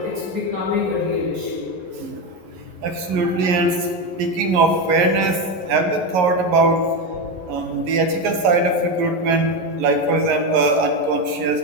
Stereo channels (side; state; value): left; late; 11 ms